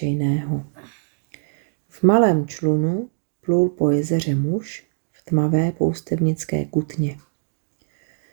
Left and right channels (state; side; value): silent; left; digital silence